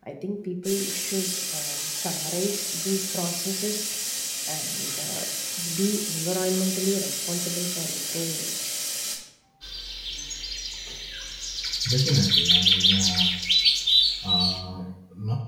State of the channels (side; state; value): both; identical; correlation 1.00